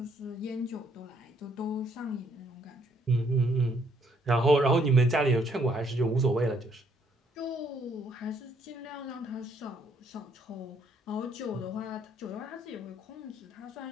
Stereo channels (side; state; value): both; normal; correlation 0.68